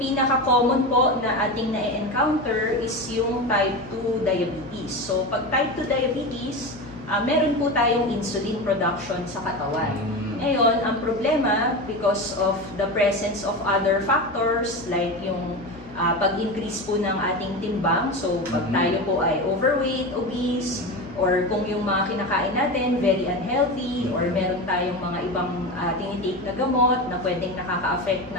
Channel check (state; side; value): noise; left; hum, 19 dB below the sound